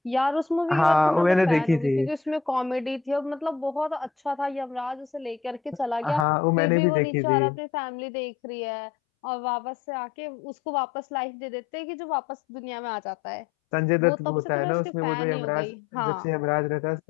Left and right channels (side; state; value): right; drops out; at 6.2 s